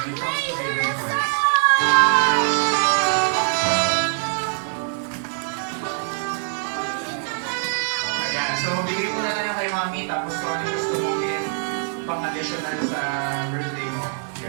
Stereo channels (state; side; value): silent; left; 61 dB below the other